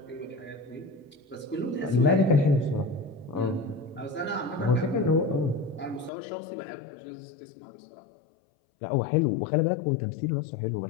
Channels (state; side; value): drops out; right; at 6.1 s